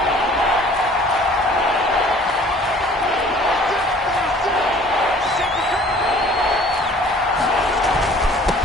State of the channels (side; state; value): both; normal; correlation 0.52